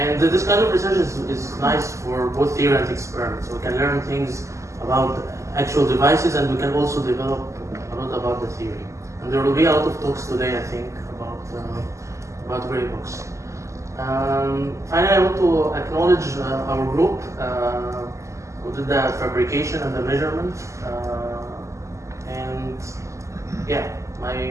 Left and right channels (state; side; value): late; left; 0.15 ms